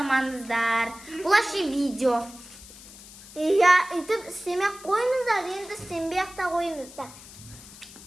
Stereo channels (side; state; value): left; noise; hiss, 18 dB below the sound